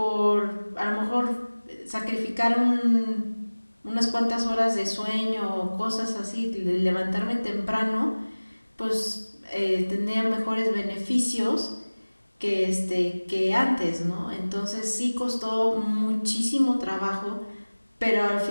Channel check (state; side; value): inverted; both; correlation -1.00